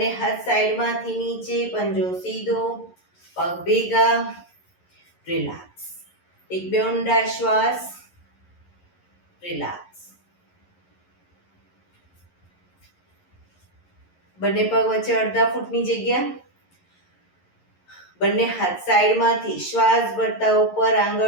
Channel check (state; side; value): late; right; 11 ms